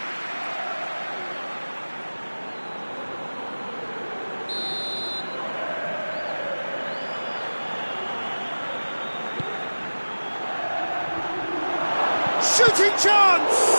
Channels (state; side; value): inverted; both; correlation -1.00